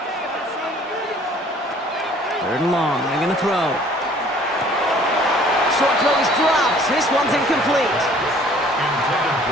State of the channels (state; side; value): normal; both; correlation 0.55